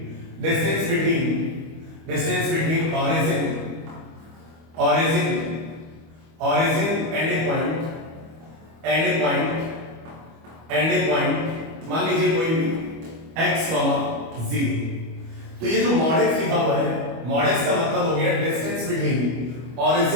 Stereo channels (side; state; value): left; late; 25 ms